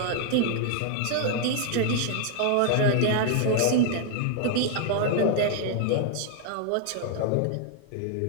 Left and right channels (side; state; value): both; different; correlation 0.00